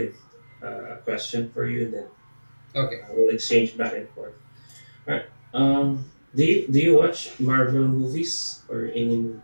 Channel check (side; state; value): both; inverted; correlation -1.00